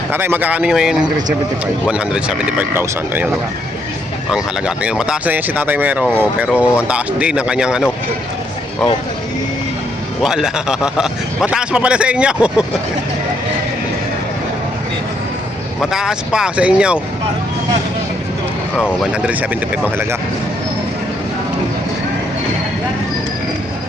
Tatay, magkakano nyo ngayon? 175. 175,000. Ayun, no. Ang halaga. Tingnan, mataas na yan si Tatay Merong, oh, pero ang taas din ng kanyang ano. Oh. Wala. Mataas pa pala sa inyo. Mataas pa sa inyo. Oh, 175 ang halaga.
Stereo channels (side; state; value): both; normal; correlation 0.73